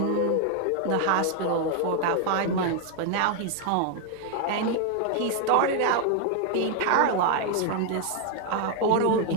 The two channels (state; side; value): different; both; correlation 0.00